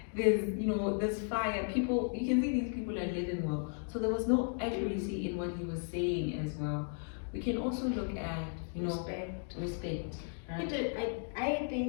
There's, you know, there's fire. People, you can see these people are living well. So there was no accuracy in what he was saying as well. We can also look at, you know, respect. He Right? did, I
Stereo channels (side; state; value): right; silent; 54 dB below the other